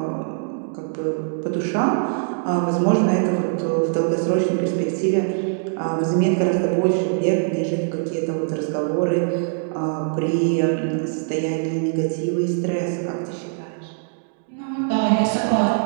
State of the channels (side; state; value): left; silent; digital silence